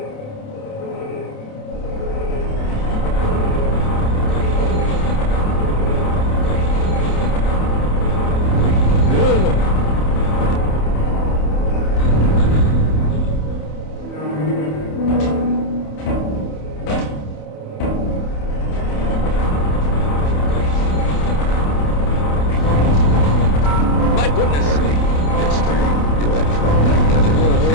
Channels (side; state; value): right; late; 31 ms